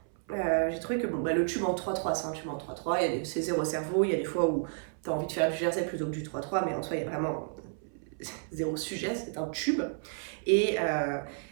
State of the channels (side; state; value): left; silent; 57 dB below the other